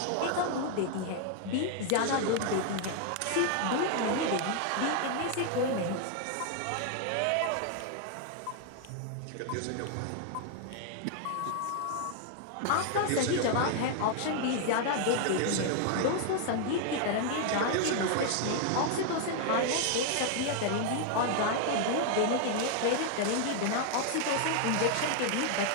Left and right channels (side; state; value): both; different; correlation 0.00